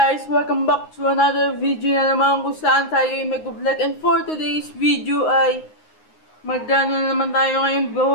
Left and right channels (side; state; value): right; late; 9.6 ms